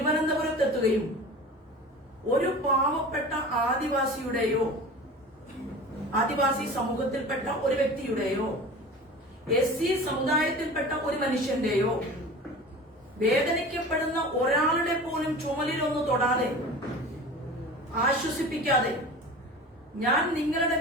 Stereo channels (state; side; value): normal; both; correlation 0.37